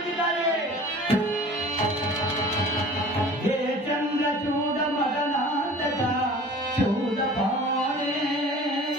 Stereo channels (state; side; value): normal; both; correlation 0.43